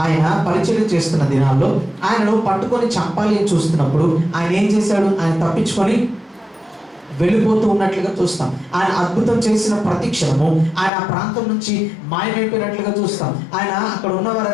ఆయన పరిచయం చేస్తున్న దినాల్లో ఆయనను పట్టుకొని చంపాలి అని చూస్తున్నప్పుడు ఆయన ఏం చేశాడు? ఆయన తప్పించుకొని వెళ్ళిపోతూ ఉన్నట్లుగా చూస్తాం. ఆయన అద్భుతం చేసిన ప్రతి క్షణము ఆయన ఆ ప్రాంతం నుంచి మాయమైపోయినట్లుగా చూస్తాం. ఆయన అక్కడ ఉన్న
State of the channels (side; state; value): right; drops out; at 10.9 s